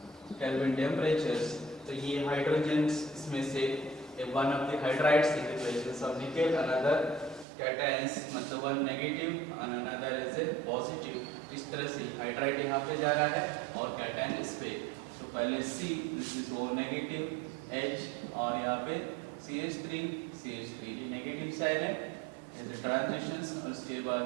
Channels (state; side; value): drops out; left; at 7.5 s